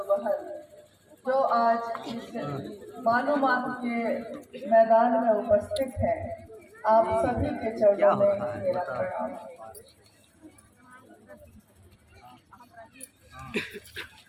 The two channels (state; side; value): identical; both; correlation 1.00